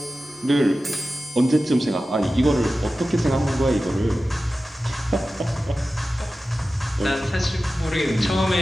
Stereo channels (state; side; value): normal; both; correlation 0.94